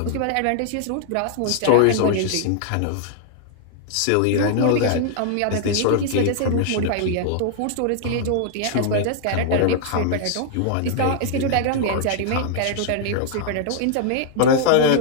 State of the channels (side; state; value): both; different; correlation 0.00